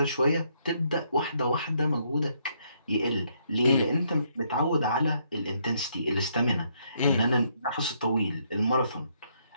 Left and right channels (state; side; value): inverted; both; correlation -0.72